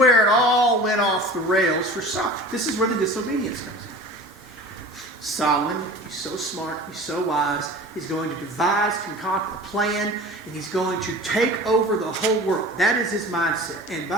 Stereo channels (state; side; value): normal; both; correlation 0.39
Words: it all went off the rails for Solomon. This is where the disobedience comes in. Solomon, he's so smart, he's so wise, he's going to devise, concoct a plan, and he's going to take over the whole world. That is his mindset. And